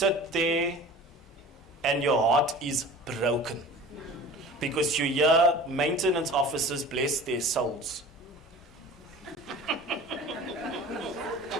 there and your heart is broken, because you hear maintenance officers, bless their souls,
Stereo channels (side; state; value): both; normal; correlation 0.41